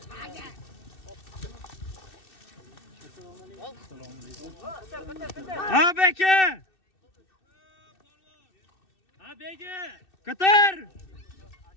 Ha beka. Ha bega. Katar.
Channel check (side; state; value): right; late; 2.6 ms